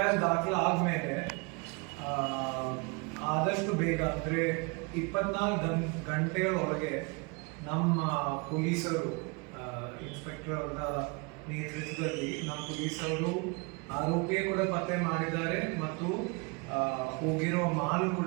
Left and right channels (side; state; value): left; quieter; 30.6 dB